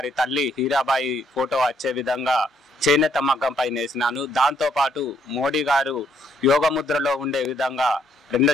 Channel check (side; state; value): both; normal; correlation 0.70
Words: తల్లి హీరాబాయి ఫోటో వచ్చే విధంగా చేనేత మగ్గంపై నేసినాను. దాంతోపాటు మోడీ గారు యోగముద్రలో ఉండే విధంగా 2